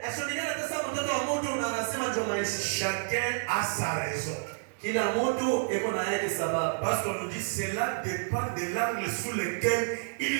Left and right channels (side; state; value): left; silent; digital silence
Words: ashonikana tasa mtoto wa mtu na anasema njoo maisha. Chacun a sa raison. Kila mtu eko na yake sababu. Parce qu'on nous dit cela dépend de l'angle sous lequel